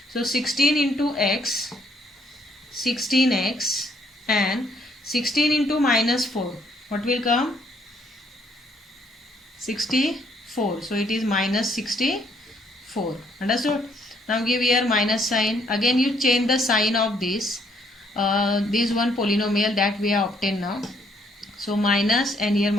So 16 into x, 16x, and 16 into minus 4. What will come? 64. So it is minus 64. Understood? Now give here minus sign. Again you change the sign of this one polynomial that we have obtained now. So minus, and here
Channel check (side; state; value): both; normal; correlation 0.67